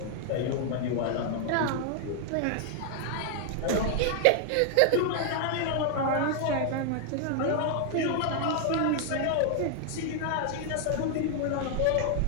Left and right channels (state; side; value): different; both; correlation 0.00